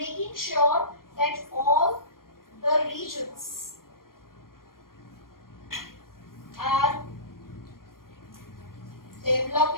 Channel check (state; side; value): late; right; 0.91 ms